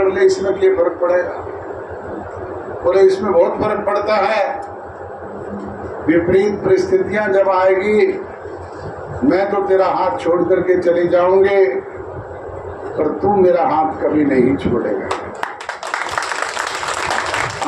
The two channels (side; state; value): both; identical; correlation 1.00